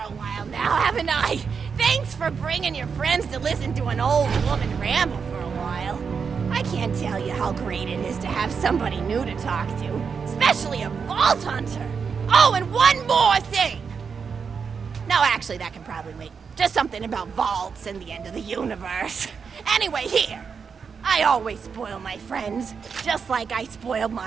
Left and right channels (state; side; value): quieter; left; 6.0 dB